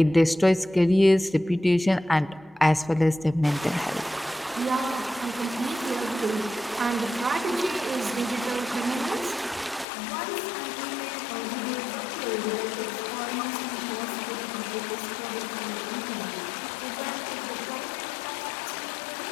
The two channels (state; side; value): drops out; right; at 9.9 s